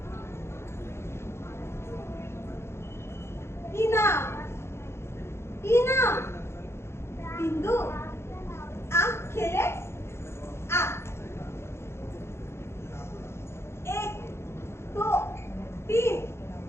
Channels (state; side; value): late; right; 0.12 ms